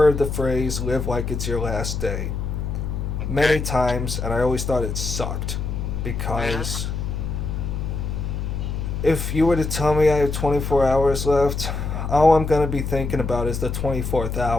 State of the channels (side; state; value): left; noise; hum, 3 dB below the sound